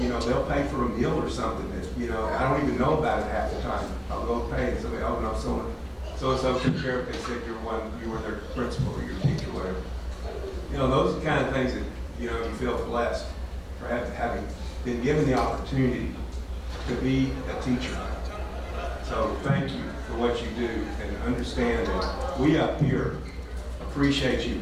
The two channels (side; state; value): both; identical; correlation 1.00